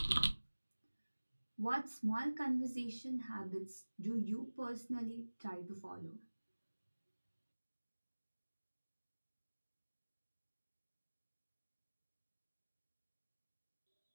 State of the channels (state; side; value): inverted; both; correlation -1.00